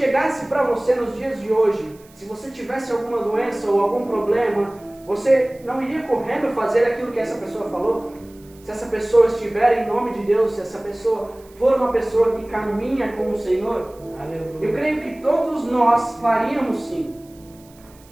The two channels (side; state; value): right; noise; hiss, 27 dB below the sound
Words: para você nos dias de hoje, se você tivesse alguma doença ou algum problema, você não iria correndo fazer aquilo que essa pessoa falou? Se essa pessoa estiver em nome de Deus, se essa pessoa for uma pessoa que caminha com o Senhor, eu creio que todos nós faríamos sim.